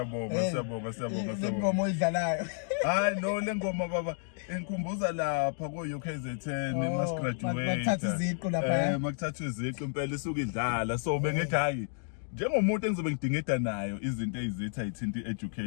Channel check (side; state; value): right; silent; 57 dB below the other